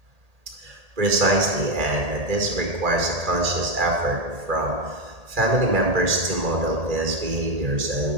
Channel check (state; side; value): late; left; 1.8 ms